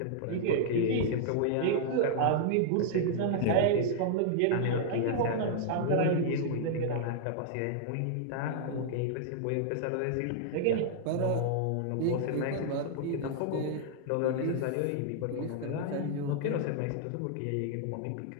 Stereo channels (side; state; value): both; different; correlation -0.01